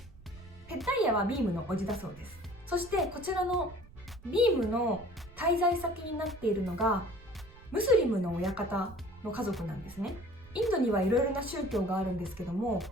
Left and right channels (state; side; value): noise; right; rumble, 20 dB below the sound